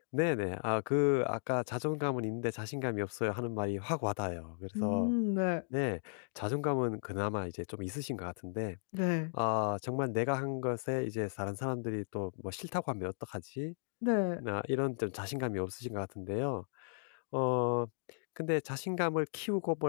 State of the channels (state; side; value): silent; right; digital silence